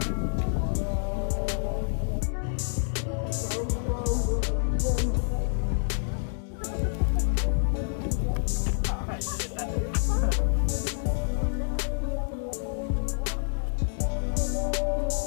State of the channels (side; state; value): right; silent; digital silence